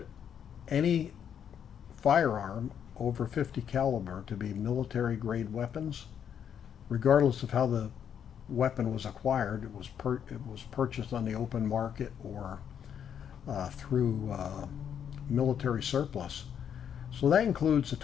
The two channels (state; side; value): quieter; right; 8.5 dB